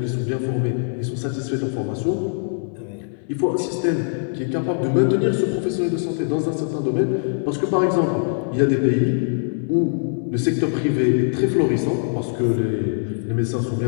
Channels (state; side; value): silent; right; 64 dB below the other